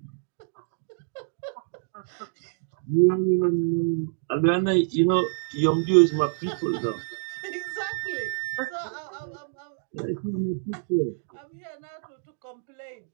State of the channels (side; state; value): left; silent; digital silence